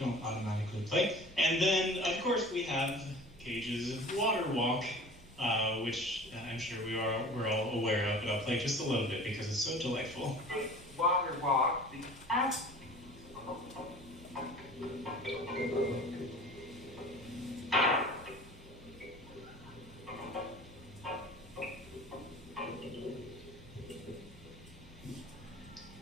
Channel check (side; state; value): both; normal; correlation 0.42